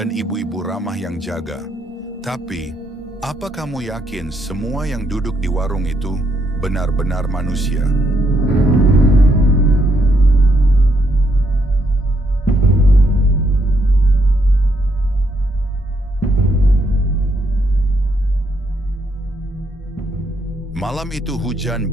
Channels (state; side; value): normal; both; correlation 0.75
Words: ibu-ibu ramah yang jaga. Tapi, apa kamu yakin semua yang duduk di warung itu benar-benar manusia? Malam itu hujan